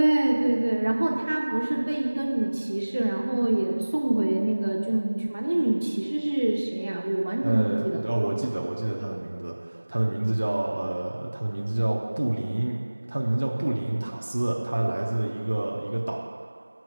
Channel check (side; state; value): both; inverted; correlation -1.00